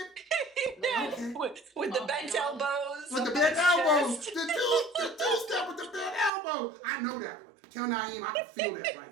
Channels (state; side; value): drops out; left; at 6.3 s